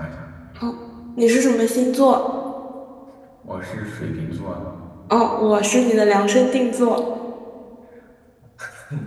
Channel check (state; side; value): identical; both; correlation 1.00